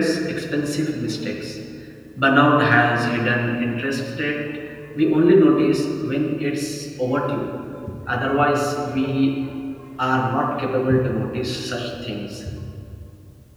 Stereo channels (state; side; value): identical; both; correlation 1.00